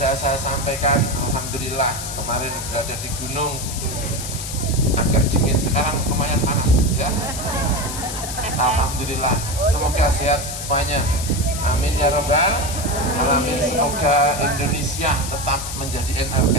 saya sampaikan. Alhamdulillah kemarin berada di gunung agak dingin, sekarang lumayan panas ya. Alhamdulillah, semoga sehat semuanya. Amin ya Rabbal alamin. Semoga Indonesia tetap menjadi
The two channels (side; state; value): left; noise; hiss, 7 dB below the sound